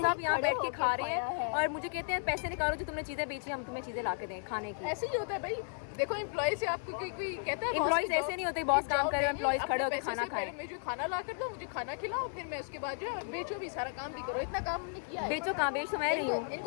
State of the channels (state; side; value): silent; right; digital silence